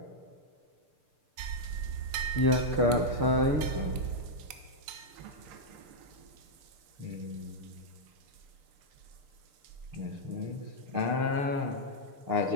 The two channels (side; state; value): left; late; 6.7 ms